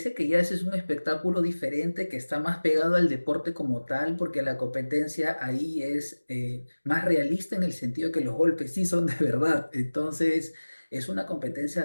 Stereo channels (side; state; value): both; inverted; correlation -1.00